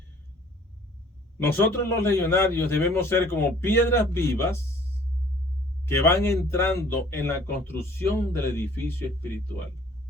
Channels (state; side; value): normal; both; correlation 0.54